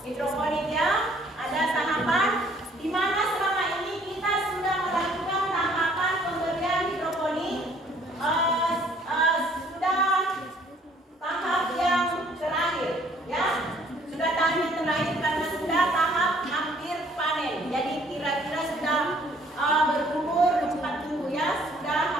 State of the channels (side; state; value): both; normal; correlation 0.60